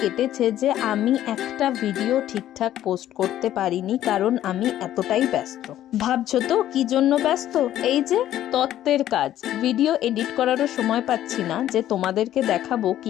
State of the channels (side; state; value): right; quieter; 12.4 dB